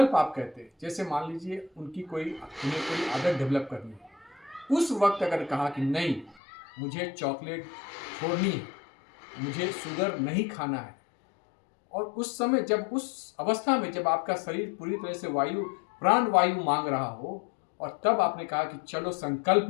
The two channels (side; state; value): right; drops out; at 6.4 s